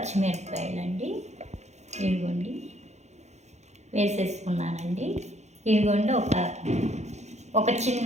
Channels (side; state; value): left; late; 0.33 ms